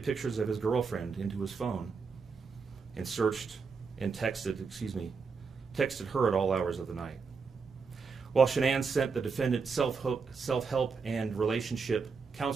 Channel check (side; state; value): left; quieter; 5.1 dB